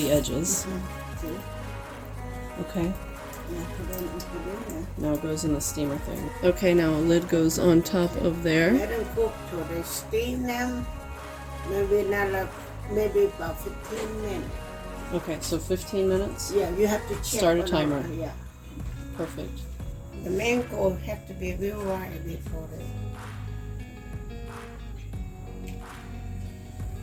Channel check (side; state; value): both; identical; correlation 1.00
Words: edges. Okay. Now it goes in the steamer thing. Okay, now a lid goes on top of there. Let them cook till they steam them. Maybe about 15 minutes. Okay, so 15 minutes? Yeah, you have to check. Start a timer. Yeah. Perfect. The mango have to be real right before they.